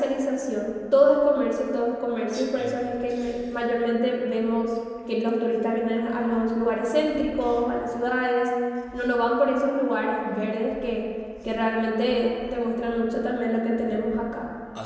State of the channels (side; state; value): both; identical; correlation 1.00